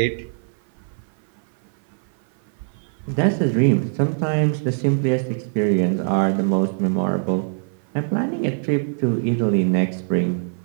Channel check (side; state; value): left; silent; 58 dB below the other